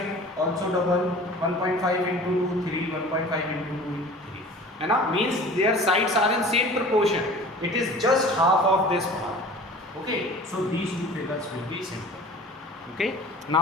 also double, 1.5 into 2, 3, 1.5 into 2, 3. And now means their sides are in same proportion. It is just half of this part. Okay, so these two figures will be simple. Okay,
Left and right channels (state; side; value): normal; both; correlation 0.43